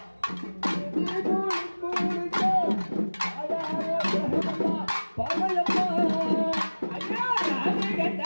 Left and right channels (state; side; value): inverted; both; correlation -1.00